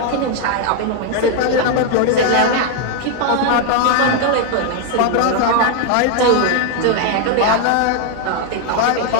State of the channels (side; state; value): both; different; correlation 0.01